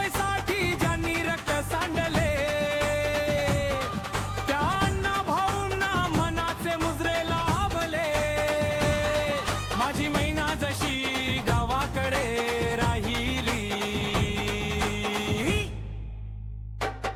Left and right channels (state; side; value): identical; both; correlation 1.00